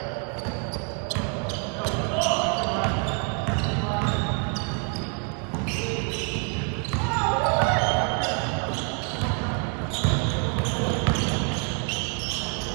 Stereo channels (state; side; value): quieter; left; 39.9 dB